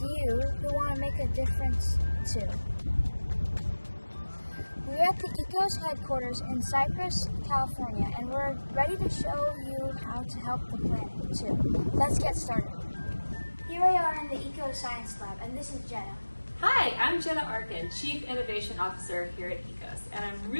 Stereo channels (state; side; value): inverted; both; correlation -1.00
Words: who want to make a difference too. We're at the ECOS headquarters in Cypress, California, and we're ready to show you how to help the planet too. Let's get started. Here we are in the Eco Science Lab, and this is Jenna. Hi, I'm Jenna Arkin, Chief Innovation Officer here at ECOS, and I'm